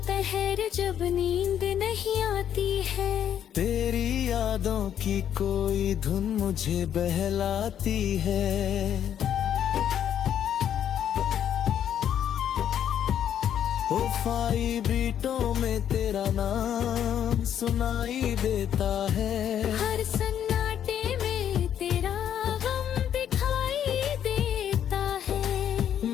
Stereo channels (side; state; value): right; quieter; 9.7 dB